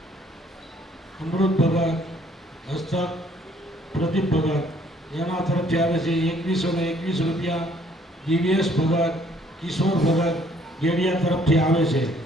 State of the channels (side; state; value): both; normal; correlation 0.62